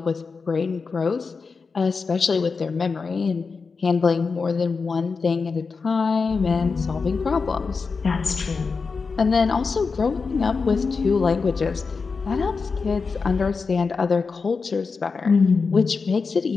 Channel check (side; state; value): right; quieter; 4.8 dB